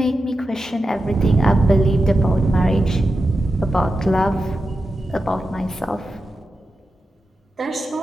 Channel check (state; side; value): normal; both; correlation 0.90